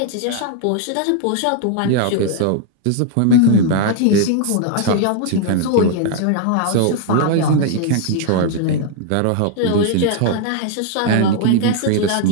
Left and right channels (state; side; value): different; both; correlation 0.00